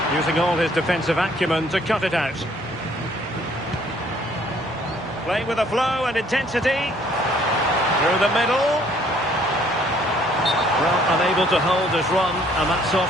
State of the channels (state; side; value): normal; both; correlation 0.61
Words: Using all his defensive acumen to cut it out. Playing with a flow and intensity. Through the middle. Well, unable to hold his run, and that's